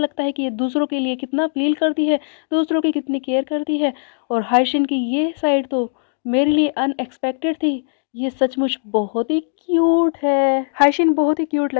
है कि ये दूसरों के लिए कितना फील करती है, दूसरों की कितनी केयर करती है। और हाइशिन की ये साइड तो मेरे लिए अनएक्सपेक्टेड थी। ये सचमुच बहुत ही क्यूट है। हाइशिन बहुत ही क्यूट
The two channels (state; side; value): silent; right; digital silence